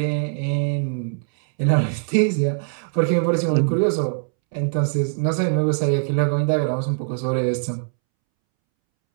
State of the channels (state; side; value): silent; left; 64 dB below the other